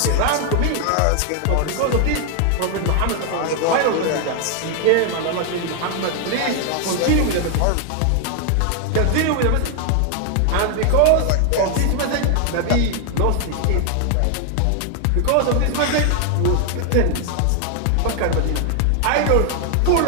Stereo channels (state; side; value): different; both; correlation 0.00